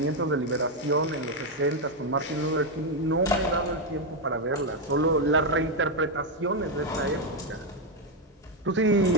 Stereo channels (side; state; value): both; normal; correlation 0.04